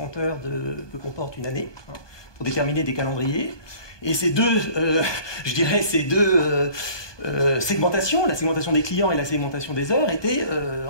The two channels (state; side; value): late; right; 1.2 ms